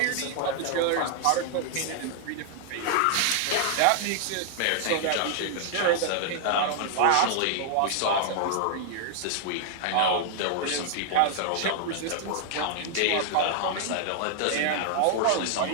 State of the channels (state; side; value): different; both; correlation 0.00